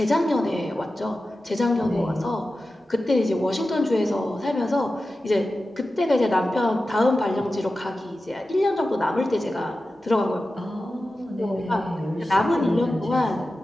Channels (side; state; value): both; normal; correlation 0.93